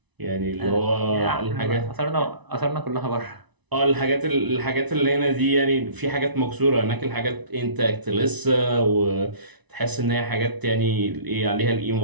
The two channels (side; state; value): left; late; 1.0 ms